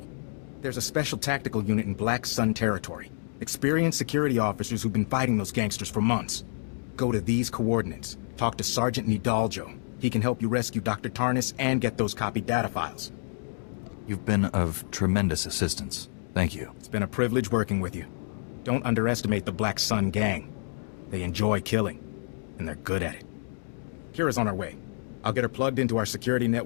There's a special tactical unit in Black Sun territory. Experienced security officers who've been fighting those gangsters for months. Go to these coordinates. Talk to Sergeant Nidaljo. He can help you rescue Dr. Tarnus and get those copied data files. You've been of tremendous assistance. Thank you. It's been a privilege working with you. Don't underestimate the Black Sun gang. They enjoy killing, and they're good at it. Kira's on her way. I'll get her plugged into our security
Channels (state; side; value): silent; right; digital silence